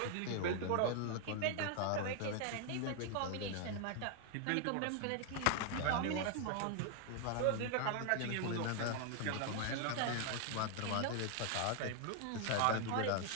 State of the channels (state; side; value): different; both; correlation 0.00